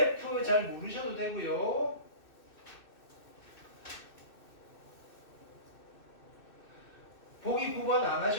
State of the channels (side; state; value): right; late; 2.6 ms